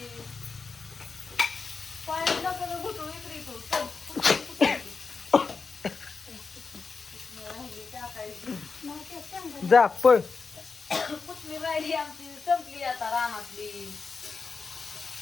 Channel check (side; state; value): right; quieter; 4.8 dB